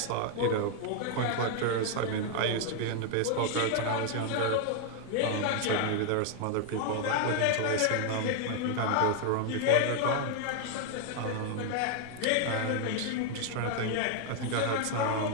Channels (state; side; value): different; both; correlation 0.00